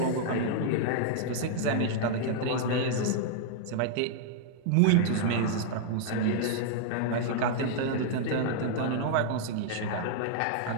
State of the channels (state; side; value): different; both; correlation -0.01